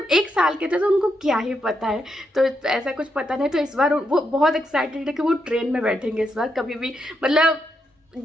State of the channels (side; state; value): both; normal; correlation 0.82